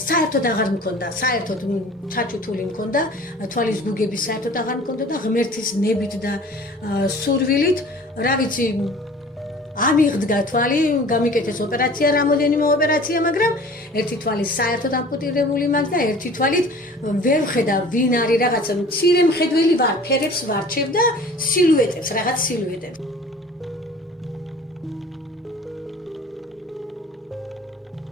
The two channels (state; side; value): normal; both; correlation 0.45